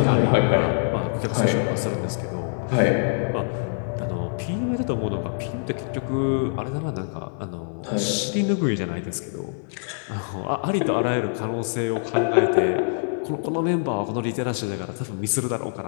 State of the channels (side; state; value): right; silent; digital silence